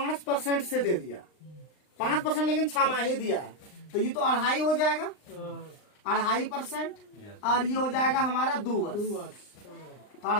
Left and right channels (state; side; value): late; right; 39 ms